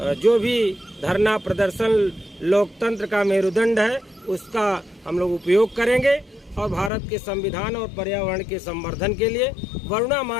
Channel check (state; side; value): drops out; right; at 6.9 s